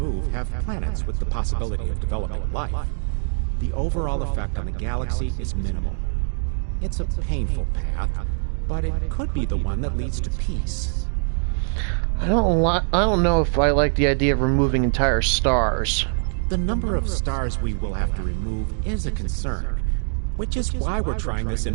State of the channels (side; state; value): left; silent; 62 dB below the other